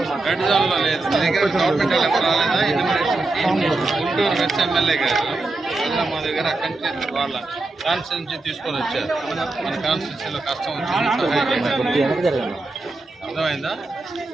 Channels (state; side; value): quieter; left; 3.2 dB